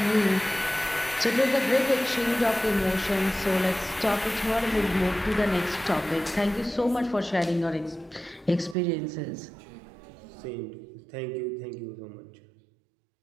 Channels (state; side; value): drops out; left; at 8.8 s